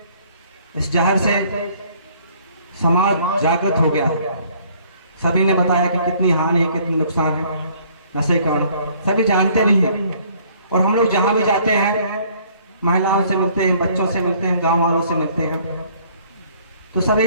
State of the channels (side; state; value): both; inverted; correlation -0.59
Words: इस जहर से समाज जागृत हो गया है। सभी ने बताया कि कितनी हानि है, कितनी नुकसान है नशे का, सभी जानते भी हैं। और हम लोग जहाँ भी जाते हैं, महिलाओं से मिलते हैं, बच्चों से मिलते हैं, गांव वालों से मिलते हैं, तो सभी